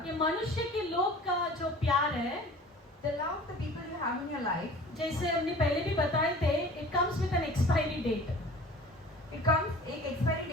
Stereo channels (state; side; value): normal; both; correlation 0.44